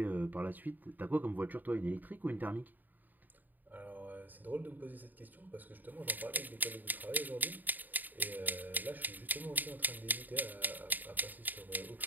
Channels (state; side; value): late; left; 0.087 ms